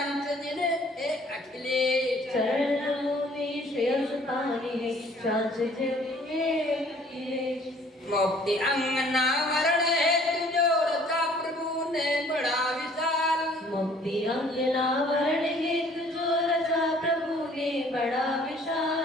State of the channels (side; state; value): both; normal; correlation 0.56